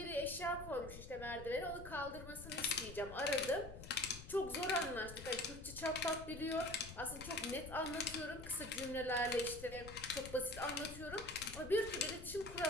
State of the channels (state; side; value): noise; left; rumble, 12 dB below the sound